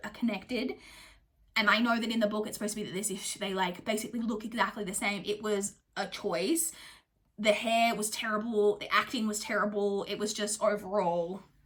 are connected. And I know that in the book it's supposed to be that they like basically look exactly the same. It was a choice. The hair was terrible. The acting was terrible. It was just overall,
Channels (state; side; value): identical; both; correlation 1.00